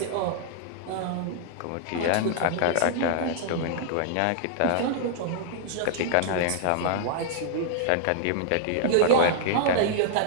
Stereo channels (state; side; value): different; both; correlation -0.01